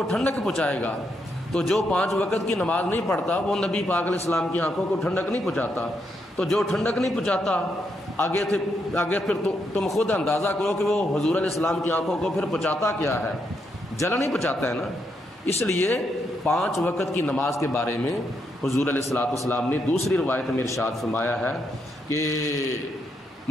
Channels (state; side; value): normal; both; correlation 0.79